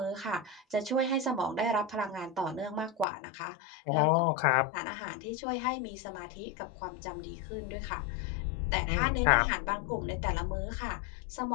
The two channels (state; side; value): drops out; right; at 3.1 s